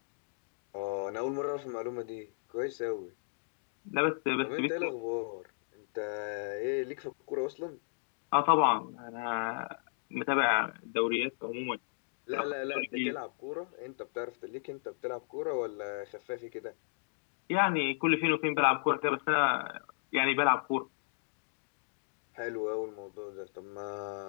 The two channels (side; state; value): right; silent; digital silence